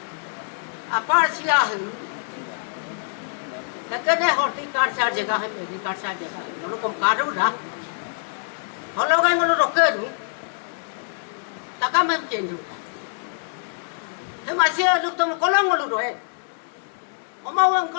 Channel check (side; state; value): right; silent; digital silence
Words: apa silahin? Kerana horticulture saja jagah, horticulture saja jagah. Kalau kamu kado dah, kalau kamu malu roket tu, takkan mungkin tu. Masih ada tu kolong malu roe. Omawang